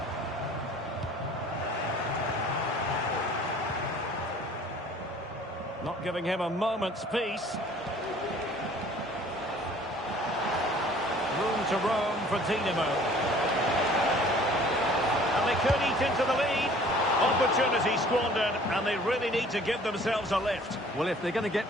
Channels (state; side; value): normal; both; correlation 0.52